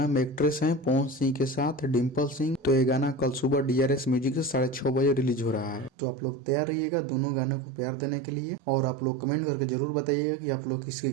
में एक्ट्रेस हैं पवन सिंह के साथ डिम्पल सिंह। तो ये गाना कल सुबह DRS म्यूजिक से 6:30 बजे रिलीज हो रहा है। तो आप लोग तैयार रहिएगा दोनों गानों को प्यार देने के लिए और आप लोग कमेंट करके जरूर बताइएगा कि आप लोग किसके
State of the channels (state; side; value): drops out; left; at 5.9 s